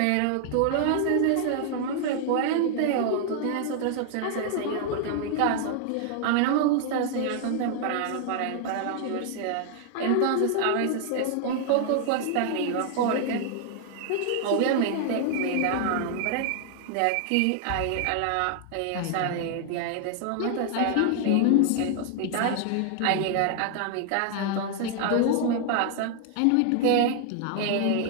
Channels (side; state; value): both; different; correlation 0.00